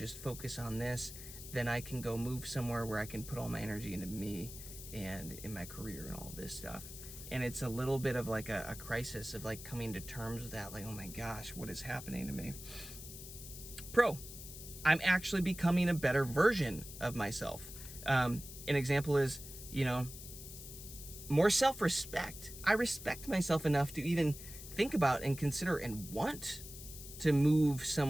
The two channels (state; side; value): noise; left; hiss, 12 dB below the sound